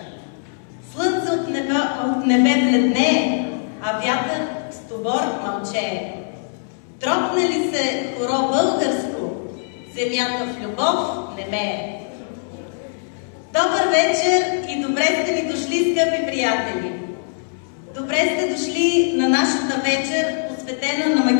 Слънце от небе бледнее, а вятър с тобор мълчее. Тропне ли се хоро българско, земята в любов немее. Добър вечер и добре сте ни дошли, скъпи приятели! Добре сте дошли на нашата вечер, посветена на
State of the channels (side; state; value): right; silent; 65 dB below the other